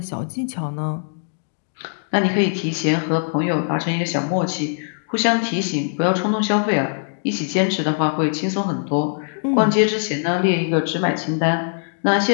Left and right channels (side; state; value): right; silent; digital silence